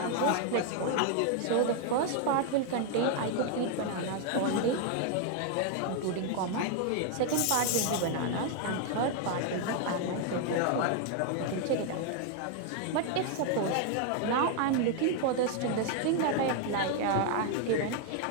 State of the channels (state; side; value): different; both; correlation 0.00